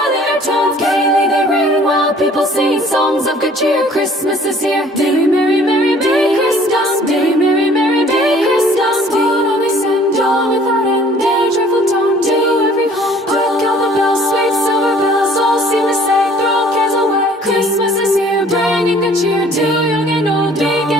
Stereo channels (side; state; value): both; normal; correlation 0.54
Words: their tones. Gaily they ring while people sing songs of good cheer. Christmas is here. Merry, merry, merry, merry Christmas. Merry, merry, merry, merry Christmas. What all they send, all without end. Their joyful tone to every home. Hark how the bells, sweet silver bells, all seem to say, throw cares away. Christmas is here, bringing good cheer to young and old, big